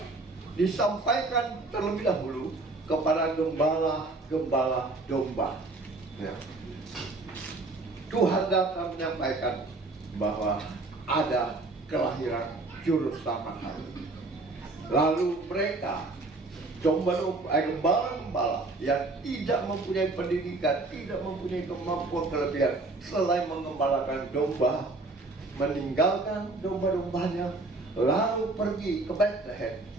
disampaikan terlebih dahulu kepada gembala-gembala domba. Ya. Tuhan datang menyampaikan bahwa ada kelahiran juru selamat hari. Lalu mereka gembala-gembala yang tidak mempunyai pendidikan, tidak mempunyai kemampuan kelebihan selain mengembalakan domba, meninggalkan domba-dombanya, lalu pergi ke Bethlehem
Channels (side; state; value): left; quieter; 3.2 dB